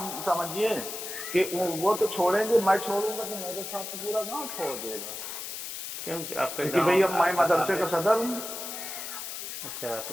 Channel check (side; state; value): left; noise; hiss, 7 dB below the sound